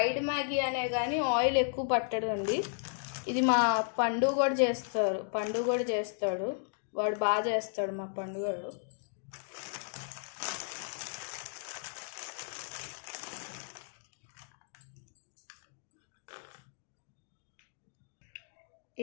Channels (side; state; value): right; silent; digital silence